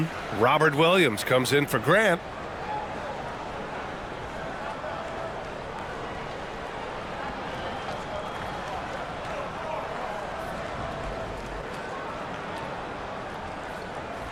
Robert Williams comes in for Grant.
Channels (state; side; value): identical; both; correlation 1.00